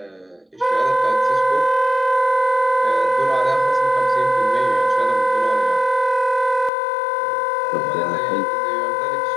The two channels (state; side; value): drops out; right; at 6.7 s